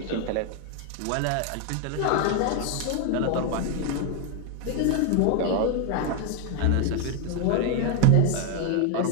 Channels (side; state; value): both; different; correlation 0.01